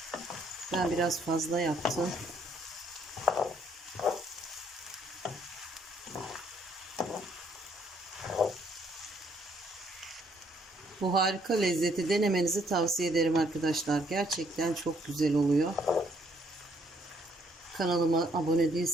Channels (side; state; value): both; normal; correlation 0.67